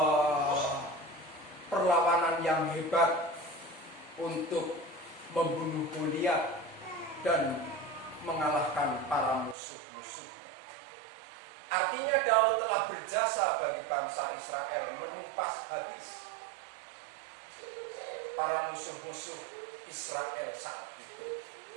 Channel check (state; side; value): drops out; left; at 9.6 s